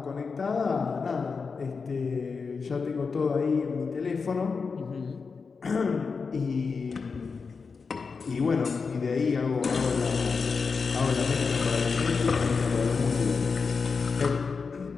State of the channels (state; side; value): quieter; right; 5.0 dB